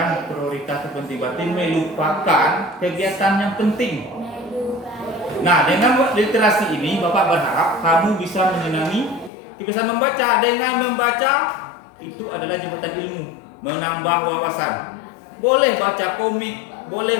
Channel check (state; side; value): drops out; right; at 9.3 s